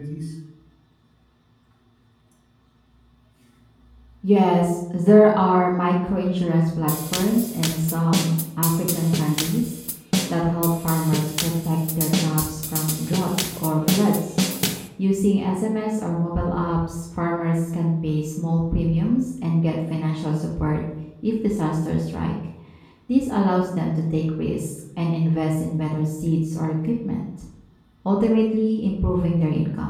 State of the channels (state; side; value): identical; both; correlation 1.00